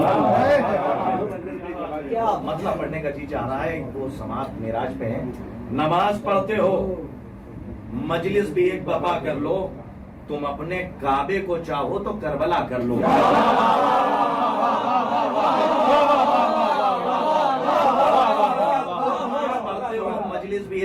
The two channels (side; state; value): both; identical; correlation 1.00